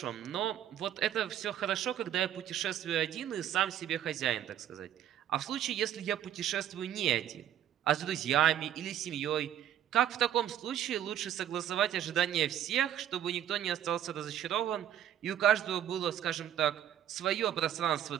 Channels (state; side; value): quieter; left; 10.7 dB